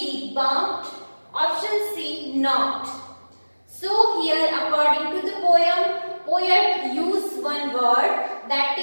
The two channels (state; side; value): inverted; both; correlation -1.00